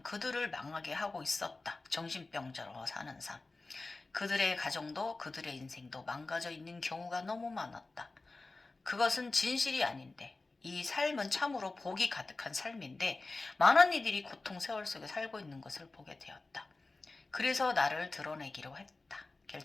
그들을 망하게 하고 있었다. 정신병자로 사는 삶. 그들의 가정도 그들의 인생도 망가져 있는 경우가 너무 많았다. 그것은 진실이 아닌데 이 삶은 참으로 복이 가득한 삶인데 많은 이들이 고통 세월 속에 살고 있는 것을 보게 되었다. 그래서 나를 드러내기로 했다.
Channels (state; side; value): quieter; right; 3.4 dB